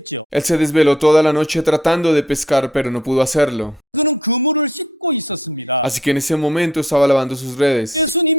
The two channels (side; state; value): both; normal; correlation 0.61